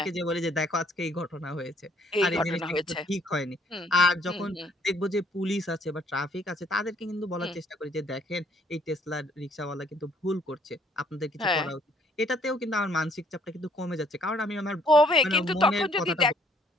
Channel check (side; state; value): both; normal; correlation 0.64